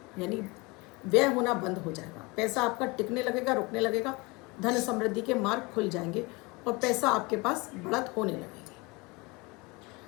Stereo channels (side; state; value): right; quieter; 25.8 dB